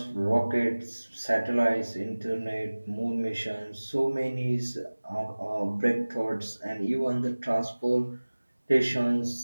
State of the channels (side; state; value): both; inverted; correlation -1.00